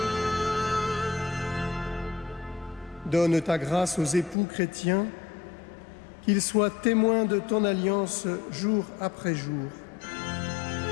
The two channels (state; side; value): drops out; right; at 4.4 s